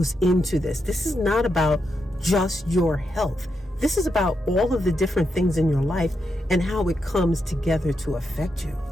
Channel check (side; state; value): both; normal; correlation 0.84